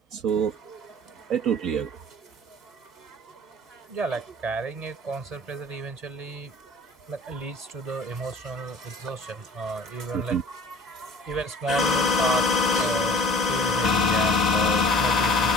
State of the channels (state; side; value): normal; both; correlation 0.46